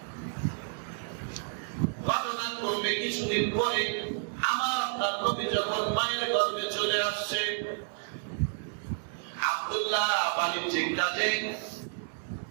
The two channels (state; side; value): silent; left; 57 dB below the other